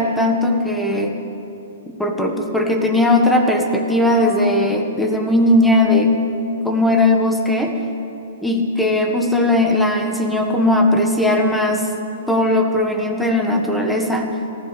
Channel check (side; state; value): both; normal; correlation 0.00